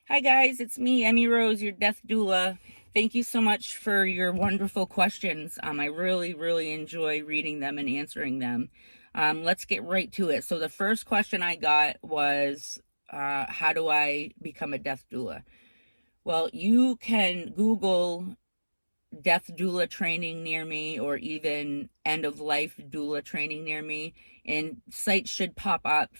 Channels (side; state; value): both; inverted; correlation -1.00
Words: Hi guys, it's me, Emmy Rose, your death doula. Thank you so much for your wonderful questions. I really enjoy reading them and answering them. Let's get right to it. So the first question I got was, how do I become a death doula? Well, you can Google death doula training near me or even end of life doula training near me, and sites should pop up